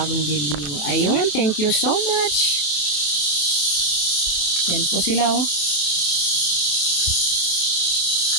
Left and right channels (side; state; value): right; late; 27 ms